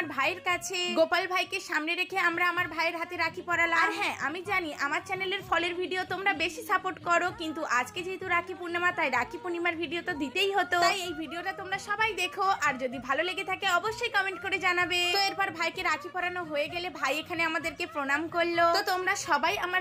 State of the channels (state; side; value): identical; both; correlation 1.00